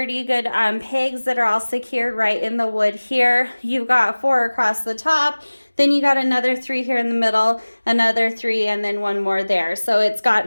good pegs that are all secured right in the wood here. You've got 4 across the top, then you got another 3 here in the middle, another 3, and then 1 more there. So it's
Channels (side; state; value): both; inverted; correlation -1.00